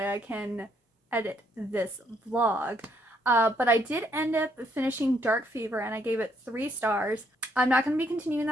I can edit this vlog. But I did end up finishing Dark Fever, and I gave it 3 stars. I'm not going to be continuing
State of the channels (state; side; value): normal; both; correlation 0.71